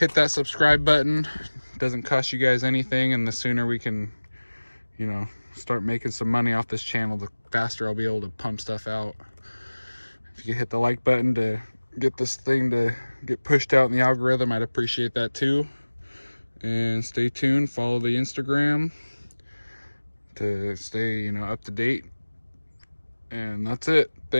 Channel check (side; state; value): both; inverted; correlation -1.00